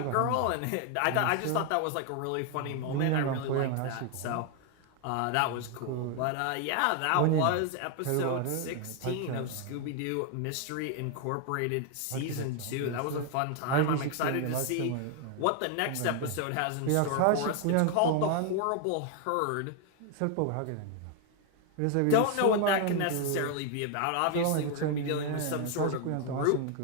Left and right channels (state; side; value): different; both; correlation 0.01